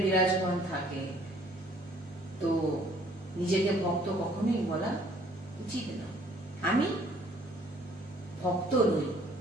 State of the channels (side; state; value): both; normal; correlation 0.59